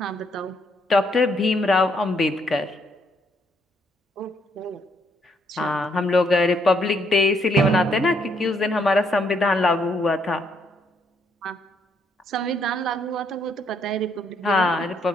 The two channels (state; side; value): normal; both; correlation 0.72